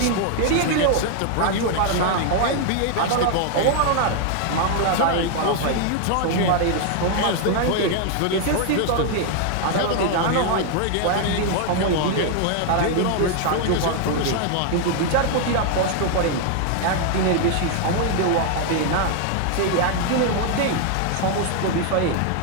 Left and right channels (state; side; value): different; both; correlation 0.00